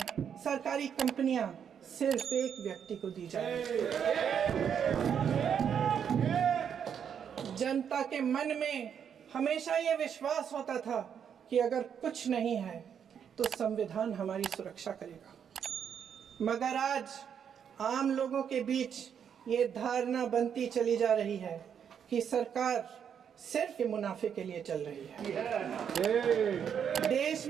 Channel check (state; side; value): quieter; left; 8.0 dB